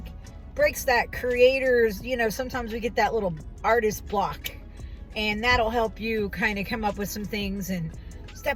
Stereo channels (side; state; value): both; identical; correlation 1.00